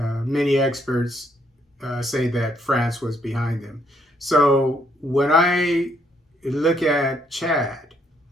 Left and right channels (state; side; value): normal; both; correlation 0.71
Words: experts say that France was behind them. So when I look at Chad